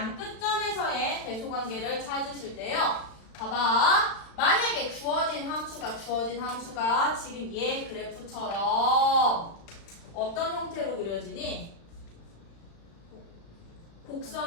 끝점에서의 대소 관계를 찾으실 때요. 봐봐. 만약에 주어진 함수가 지금 얘 그래프처럼 어떤 형태로 그려지니?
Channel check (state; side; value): late; right; 36 ms